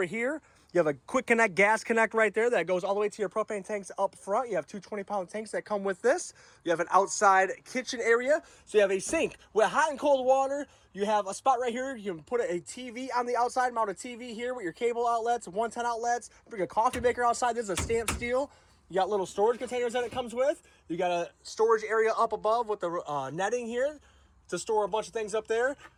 here. You have a quick connect gas connect right there that goes all the way to your propane tanks up front. You have two 20-pound tanks that come with this. You have an outside kitchen area. So you have a sink with hot and cold water. You have a spot right here. You can put a TV on the outside, mount a TV here with your cable outlets, 110 outlets. Bring a coffee maker outside. This is a stamped steel. You got little storage containers that it comes with. You got a storage area up above with the netting here to store a bunch of things up there.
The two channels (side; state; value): both; identical; correlation 1.00